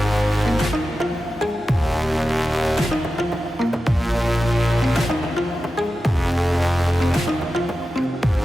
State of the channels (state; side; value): normal; both; correlation 0.92